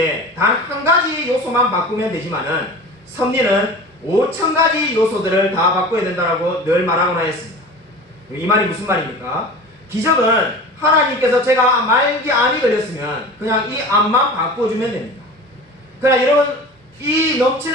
단 한 가지 요소만 바꾸면 되지만은 섭리는 5,000가지 요소들을 다 바꿔야 된다고 늘 말하곤 하였습니다. 이 말이 무슨 말입니까? 기적은 하나님께서 제가 말기 암이 걸렸으면 그냥 이 암만 바꿔주면 됩니다. 그러나 여러분 이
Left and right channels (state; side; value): normal; both; correlation 0.36